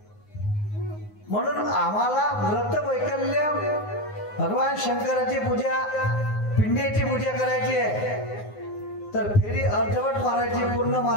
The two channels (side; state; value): right; late; 9.6 ms